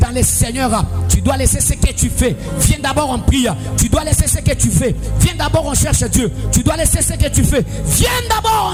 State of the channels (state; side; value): identical; both; correlation 1.00